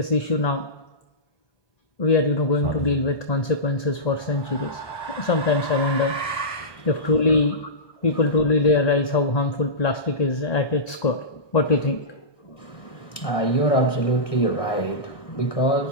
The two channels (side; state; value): right; late; 1.2 ms